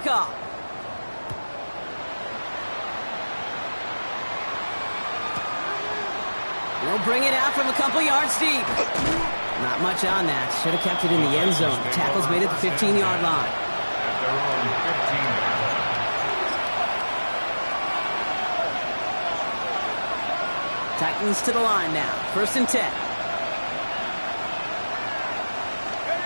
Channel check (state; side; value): inverted; both; correlation -1.00